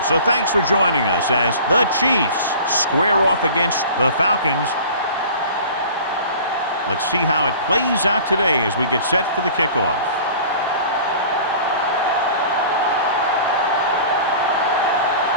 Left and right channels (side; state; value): both; inverted; correlation -0.42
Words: So thanks for joining us as the Chiefs square off against the Falcons. Let's see how it plays out today as we get set for the kickoff.